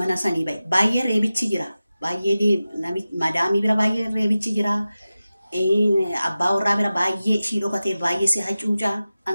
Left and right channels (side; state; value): both; inverted; correlation -0.95